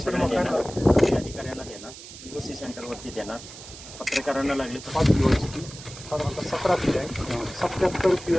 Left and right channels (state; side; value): noise; right; hiss, 15 dB below the sound